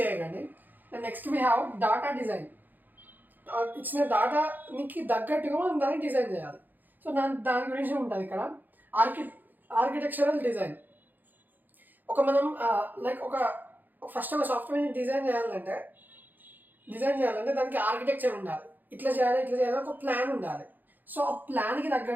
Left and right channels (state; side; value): late; left; 0.086 ms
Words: అయ్యకండి. Next we have data design. ఇచ్చిన డాటాకి తగ్గట్టుగా మనం దాన్ని డిజైన్ చేయాలి. సో దాని గురించి ఉంటుంది ఇక్కడ. Architectural design. మనం లైక్ ఫస్ట్ ఒక సాఫ్ట్వేర్ని డిజైన్ చేయాలంటే దానికి ఆర్కిటెక్చర్ ఉండాలి. ఇట్లా చేయాలి ఒక ప్లాన్ ఉండాలి. సో ఆ ప్లాన్కి